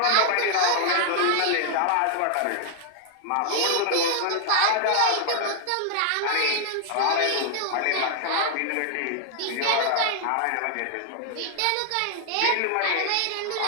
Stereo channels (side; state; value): both; different; correlation 0.00